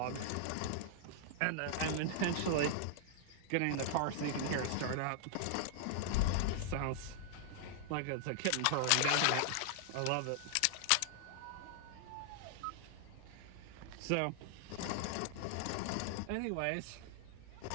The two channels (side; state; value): both; different; correlation -0.01